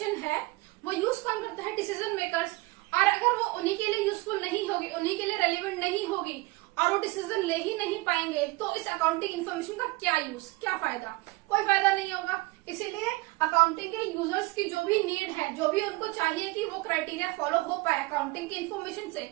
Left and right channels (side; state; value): left; quieter; 22.5 dB